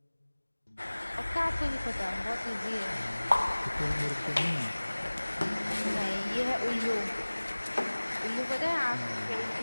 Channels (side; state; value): both; inverted; correlation -1.00